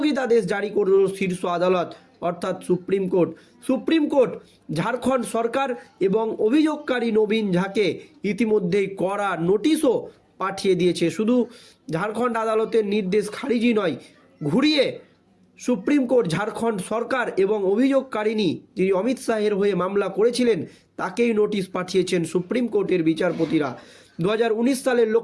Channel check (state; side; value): identical; both; correlation 1.00